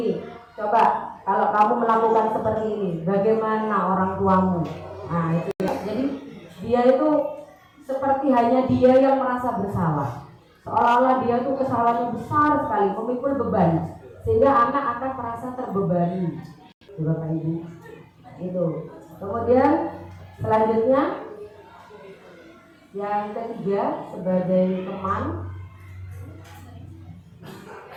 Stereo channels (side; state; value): both; identical; correlation 1.00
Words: coba kalau kamu melakukan seperti ini, bagaimana orang tuamu? Nah itu ya. Jadi dia itu seperti hanya dia yang merasa bersalah, seolah-olah dia itu kesalahannya besar sekali, memikul beban, sehingga anak akan merasa terbebani bapak ibu itu. Kemudian selanjutnya yang ketiga, sebagai teman,